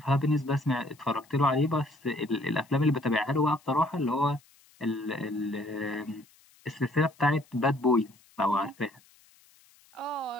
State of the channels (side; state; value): left; noise; hiss, 29 dB below the sound